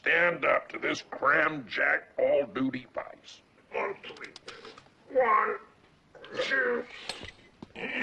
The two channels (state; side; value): identical; both; correlation 1.00